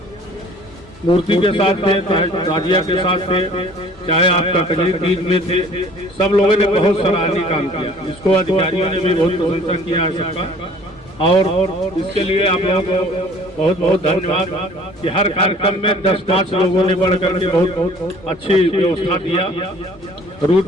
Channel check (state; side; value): normal; both; correlation 0.52